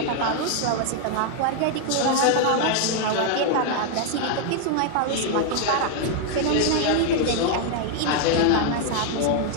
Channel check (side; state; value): both; different; correlation 0.00